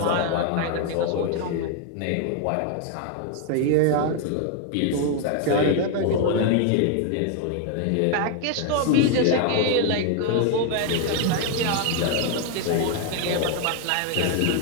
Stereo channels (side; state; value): both; different; correlation 0.01